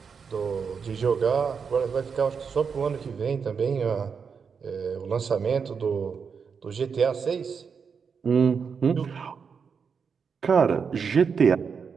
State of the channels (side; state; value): left; quieter; 6.1 dB